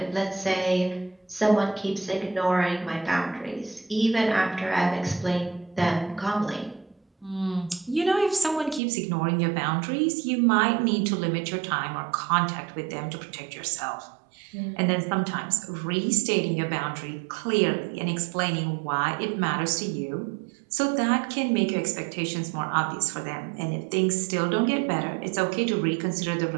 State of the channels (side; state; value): left; drops out; at 8.8 s